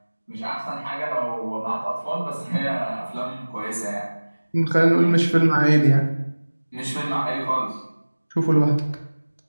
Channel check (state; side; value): inverted; both; correlation -1.00